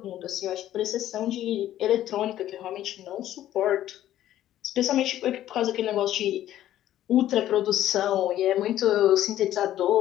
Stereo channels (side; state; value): right; quieter; 12.7 dB